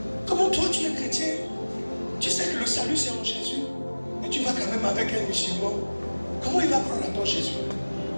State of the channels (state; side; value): inverted; both; correlation -1.00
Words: Comment toi tu es chrétien? Tu sais que le salut c'est en Jésus, mais tu vas quand même avec un musulman. Comment il va croire à ton Jésus?